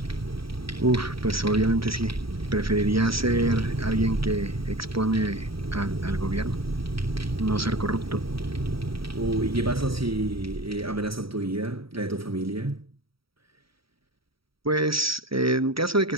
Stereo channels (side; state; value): left; late; 0.75 ms